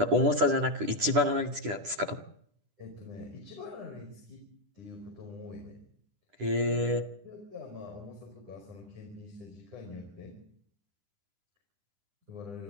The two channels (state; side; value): late; left; 10 ms